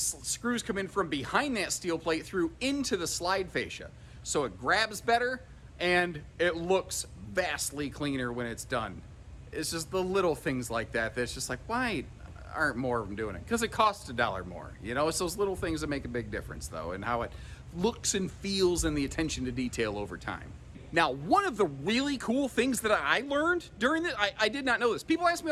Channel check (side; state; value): both; identical; correlation 1.00